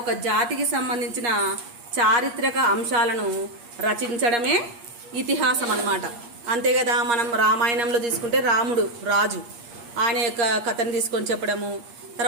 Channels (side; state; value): left; late; 8.5 ms